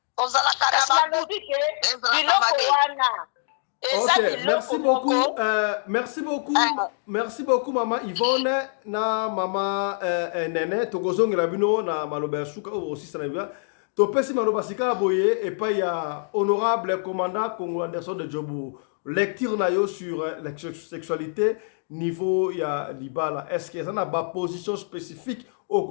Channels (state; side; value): silent; right; digital silence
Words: Ok, merci beaucoup mama Yvonne na mama Nene tokozongela bino na maloba ya suka aussi sana bia topesi maloba sika boye et pas ya honorable commandant Congo Anderson de Djobu lecture na yo sur la sexualité niveau ya libala est-ce que ça na ba position spécifique au